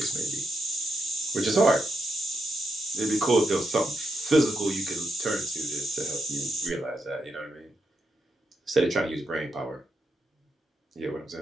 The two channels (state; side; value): normal; both; correlation 0.84